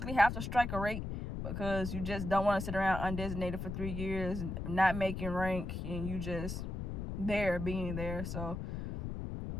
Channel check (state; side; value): noise; left; rumble, 4 dB below the sound